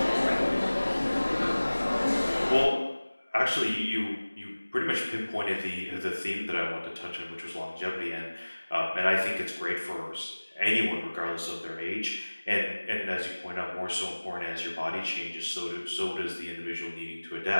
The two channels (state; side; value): inverted; both; correlation -1.00